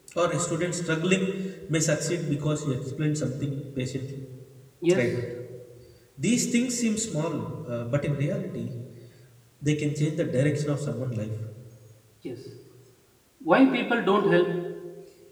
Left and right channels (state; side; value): identical; both; correlation 1.00